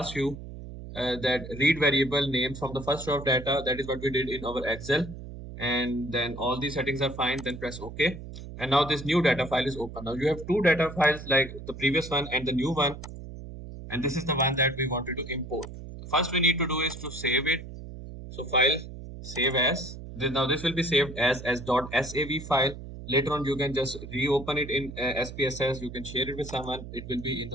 you that read variable name from the first row of data. That is what we did in our Excel. And then all these settings are fine, then press OK. And now this new data file is open. Now you have two data files, like the previous one and the new one. And this is the one that we wanted to import. First we need to do is to save it. So file, save as. Now this will be saved as .sav file. Later on you can just reopen it in SPSS. You can share it with someone. It will be in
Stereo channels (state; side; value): noise; right; hum, 12 dB below the sound